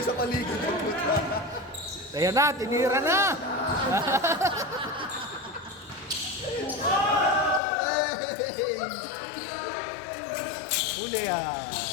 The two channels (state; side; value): drops out; right; at 7.6 s